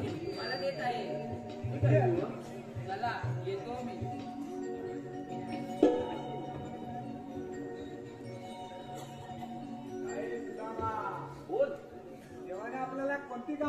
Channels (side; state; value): both; identical; correlation 1.00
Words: मला देत आहे. चला येतो मी. बोल, देवाने आपल्याला कोणती